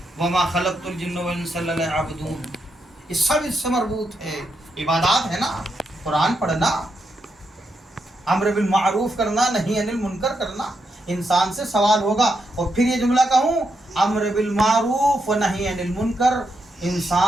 वमा खलक़तुल जिन्न वल इंसा इल्ला लियअबुदून, ये सब इससे मरबूत है, इबादत है ना। कुरान पढ़ना, अम्र बिल मारूफ करना, नहीं अनिल मुनकर करना, इंसान से सवाल होगा। और फिर ये जुमला कहूँ, अम्र बिल मारूफ व नही अनिल मुनकर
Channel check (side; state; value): both; normal; correlation 0.82